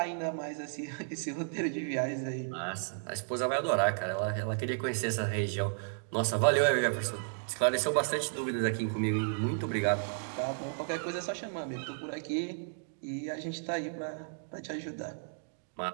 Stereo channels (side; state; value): left; silent; digital silence